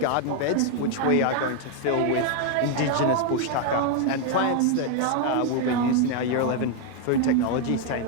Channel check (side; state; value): both; different; correlation 0.01